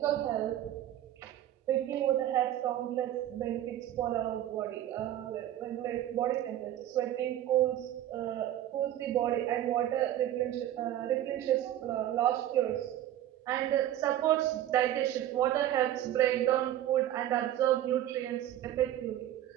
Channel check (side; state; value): left; quieter; 12.5 dB